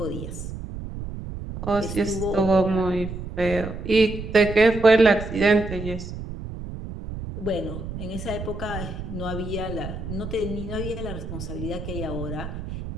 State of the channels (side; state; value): right; noise; rumble, 8 dB below the sound